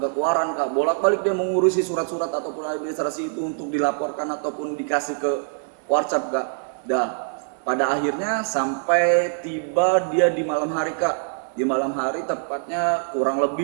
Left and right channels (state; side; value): silent; left; digital silence